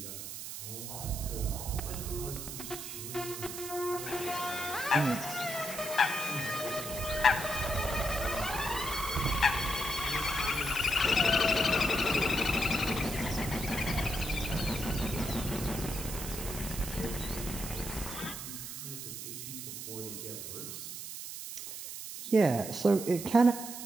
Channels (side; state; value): right; noise; hiss, 8 dB below the sound